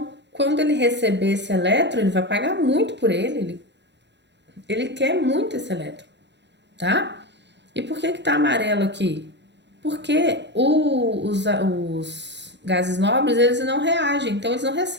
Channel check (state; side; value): late; left; 0.51 ms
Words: quando ele receber esse elétron, ele vai pagar muito por ele. Ele quer muito esse elétron, tá? E por que que tá amarelo aqui? Porque os gases nobres, eles não reagem, então eles não